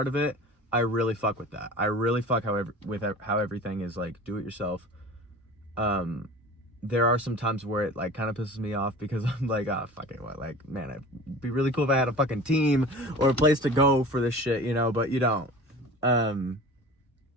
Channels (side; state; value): both; normal; correlation 0.39